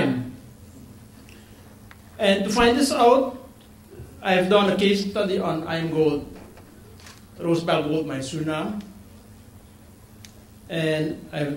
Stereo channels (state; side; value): identical; both; correlation 1.00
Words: And to find this out, I've done a case study on IAMGOLD, Rosebel Gold Mine, Suriname. And I've